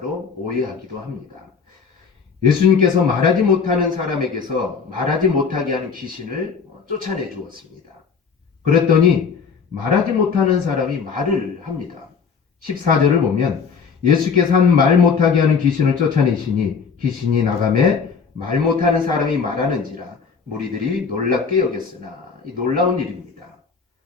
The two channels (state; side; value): quieter; right; 5.7 dB